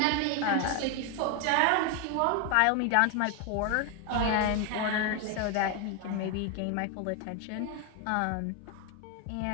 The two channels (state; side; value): different; both; correlation 0.01